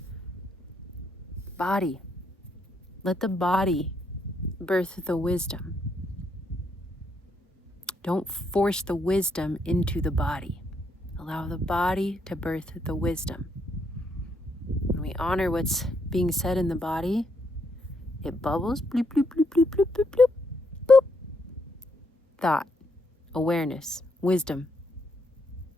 Body. Let the body birth the wisdom. Don't force the wisdom into the body. Allow the body to birth the wisdom. When we honor what's being said in the body, it bubbles, bloop, bloop, bloop, bloop, bloop, bloop, bloop, boop. Thought, awareness, wisdom.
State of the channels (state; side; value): normal; both; correlation 0.75